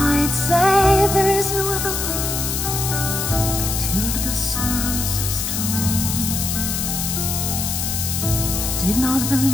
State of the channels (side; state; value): left; noise; hiss, 2 dB below the sound